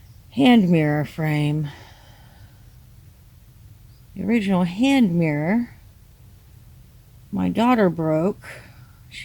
hand mirror frame. The original hand mirror my daughter broke.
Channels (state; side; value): identical; both; correlation 1.00